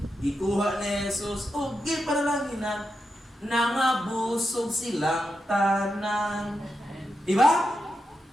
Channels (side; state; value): both; normal; correlation 0.87